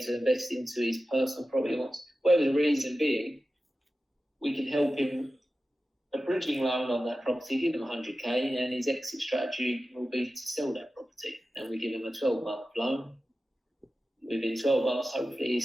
to invest into his personal property. Whatever the reason being, we can help him a bridging loan on that property, give him 100k, and his exit strategy will be to sell that property. And we give him a 12-month loan, within 12 months, hopefully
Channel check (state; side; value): normal; both; correlation 0.93